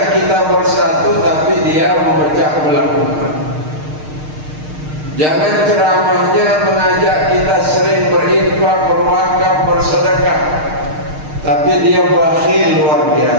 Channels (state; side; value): late; left; 6.5 ms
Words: kita bersatu tapi dia memecah belah umat. Jangan ceramahnya mengajak kita sering berinfak, berwakaf, bersedekah, tapi dia bakhil luar